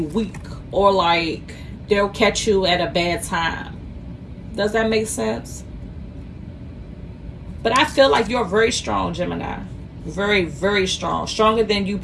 or like they'll catch you at a bad time. Does that make sense? But I feel like you're very strong, Gemini. Very, very strong. Stronger than you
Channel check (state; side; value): identical; both; correlation 1.00